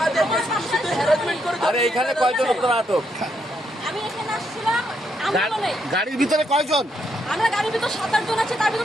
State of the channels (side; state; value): both; normal; correlation 0.77